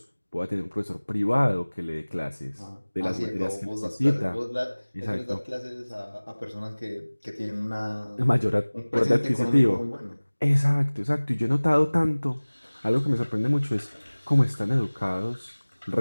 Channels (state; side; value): inverted; both; correlation -1.00